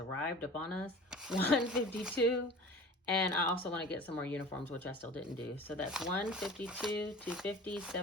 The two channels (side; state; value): both; normal; correlation 0.40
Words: upon us. 152. And I also want to get some more uniforms, which I still didn't do. So that's 152, 250,